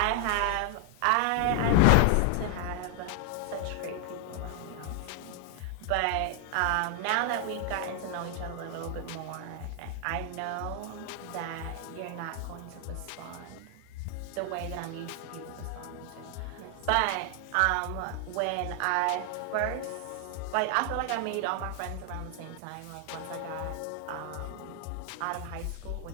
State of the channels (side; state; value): both; different; correlation 0.00